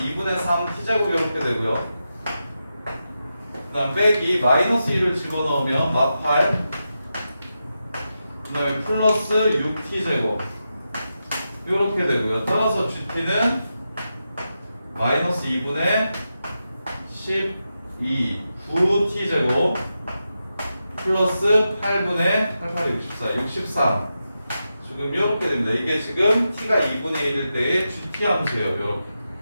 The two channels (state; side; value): inverted; both; correlation -0.89